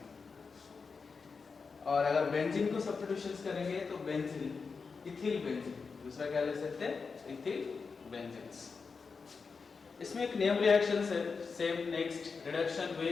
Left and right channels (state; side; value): quieter; right; 5.0 dB